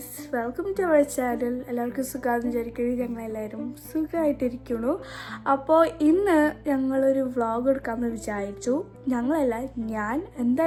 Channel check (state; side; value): identical; both; correlation 1.00